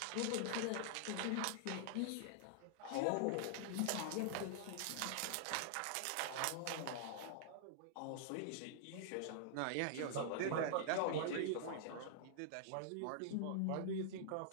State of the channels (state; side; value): different; both; correlation -0.01